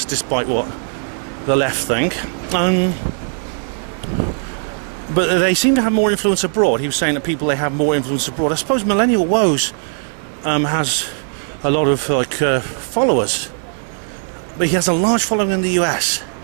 what the left think. But they seem to have more influence abroad. He was saying that people, they have more influence abroad. I suppose Millennial Woes has a lot of followers. But he has a large following in the US.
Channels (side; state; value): left; silent; 61 dB below the other